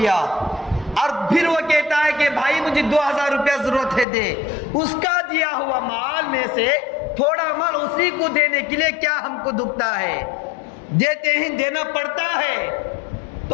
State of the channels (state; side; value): drops out; right; at 4.0 s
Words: اور پھر وہ کہتا ہے کہ بھائی مجھے 2000 روپیہ ضرورت ہے دے، اس کا دیا ہوا مال میں سے تھوڑا مال اسی کو دینے کے لیے کیا ہم کو دکھتا ہے؟ دیتے ہیں، دینا پڑتا ہے۔